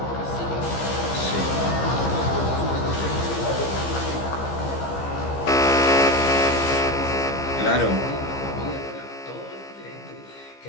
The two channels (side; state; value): right; late; 15 ms